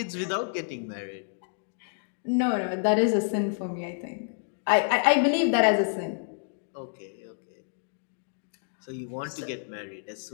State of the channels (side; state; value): right; silent; digital silence